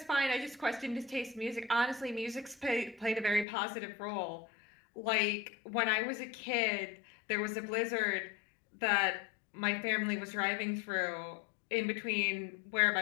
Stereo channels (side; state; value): right; drops out; at 3.5 s